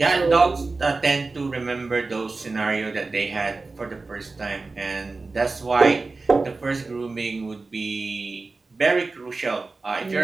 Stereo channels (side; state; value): left; quieter; 3.7 dB